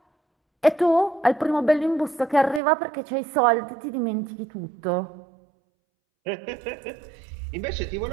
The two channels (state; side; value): drops out; left; at 2.6 s